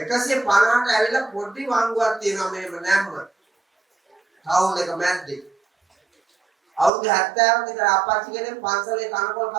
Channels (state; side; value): drops out; left; at 6.9 s